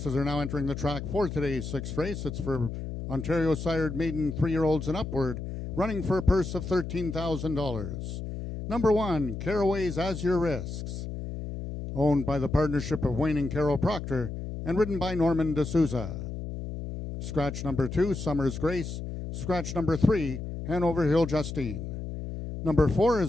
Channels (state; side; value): noise; left; hum, 7 dB below the sound